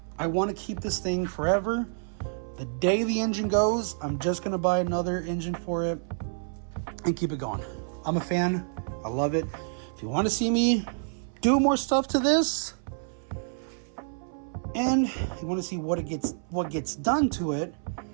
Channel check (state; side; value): silent; left; 59 dB below the other